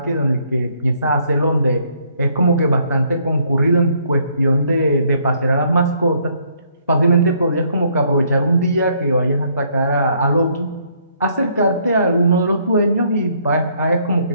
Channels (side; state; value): both; inverted; correlation -0.67